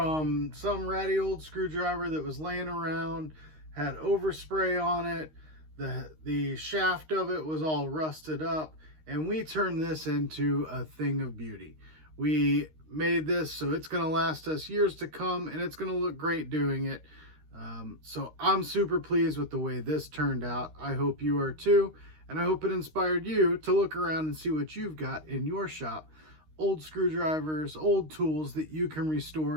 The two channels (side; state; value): left; late; 13 ms